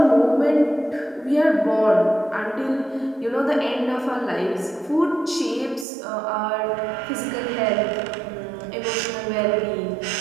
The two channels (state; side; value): drops out; left; at 5.9 s